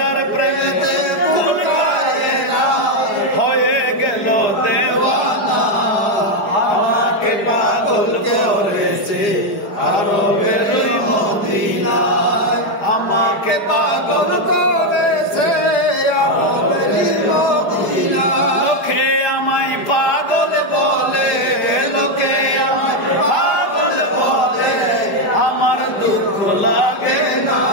প্রেমেতে কুল কায়না হয়ে গেল দেওয়ানা। আমাকে পাগল করেছে আরবের মদিনা, আমাকে পাগল করেছে আরবের মদিনা। লোকে আমায় পাগল বলে, লোকে আমায় পাগল বলে, আমার দুঃখ লাগে না।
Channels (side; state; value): right; late; 4.9 ms